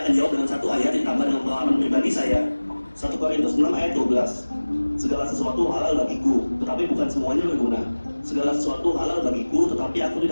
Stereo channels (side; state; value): both; inverted; correlation -1.00